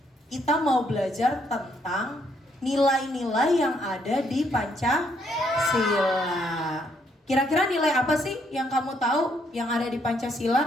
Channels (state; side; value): normal; both; correlation 0.71